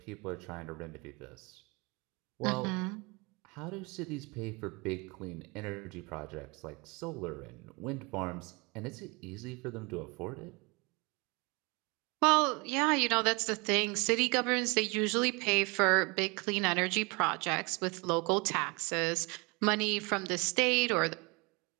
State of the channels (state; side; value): quieter; left; 28.3 dB